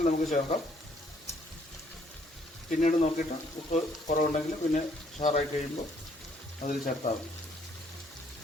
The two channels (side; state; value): both; normal; correlation 0.65